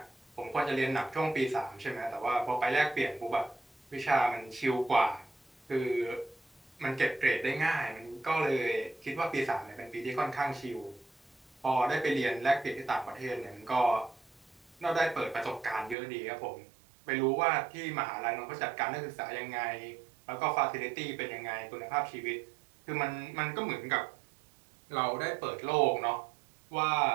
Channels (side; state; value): left; drops out; at 16.0 s